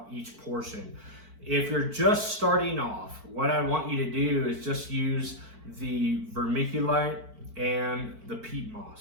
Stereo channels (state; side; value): late; left; 4.5 ms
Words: each portion. If you're just starting off, what I want you to do is just use the vermiculite and the peat